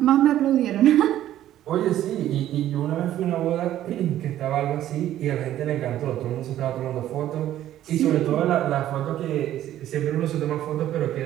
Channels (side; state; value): left; quieter; 12.6 dB